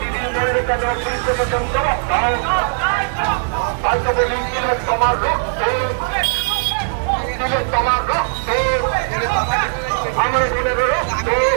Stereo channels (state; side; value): silent; left; digital silence